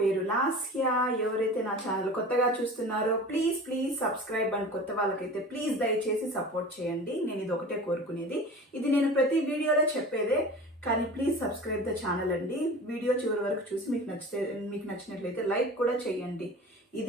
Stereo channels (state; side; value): normal; both; correlation 0.37